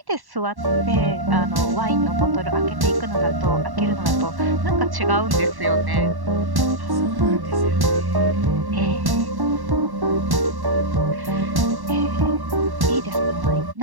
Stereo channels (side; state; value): left; late; 1.1 ms